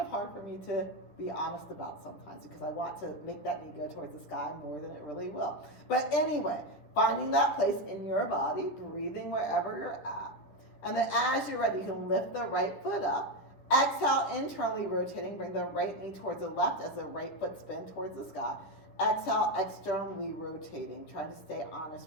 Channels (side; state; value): right; late; 10 ms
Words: hard for me to be honest about sometimes, because I want to make that knee go towards the sky more than it really will. But anyway, finding that place in your body, breathing wherever you're at. And then as you're ready, you can lift the right foot up. Exhale, internally rotating, bring the right knee towards the left as the right foot spins towards the sky. Exhale, externally rotating, trying to stay